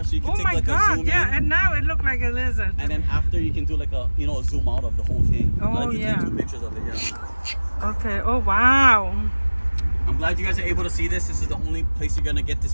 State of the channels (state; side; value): inverted; both; correlation -1.00